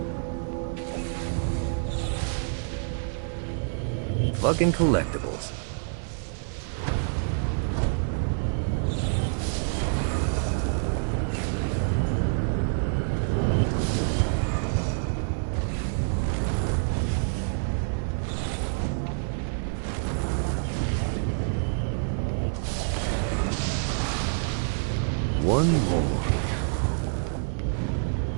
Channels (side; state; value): left; silent; 60 dB below the other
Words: Fucking collectibles. One more.